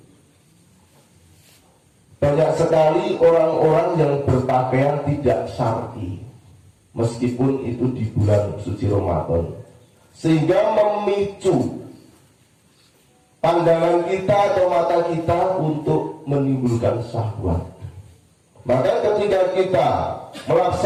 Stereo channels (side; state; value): both; identical; correlation 1.00